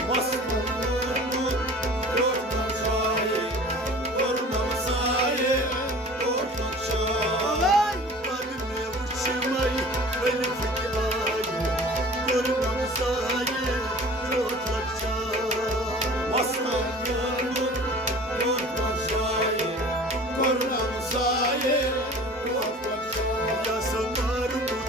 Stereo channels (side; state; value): both; normal; correlation 0.43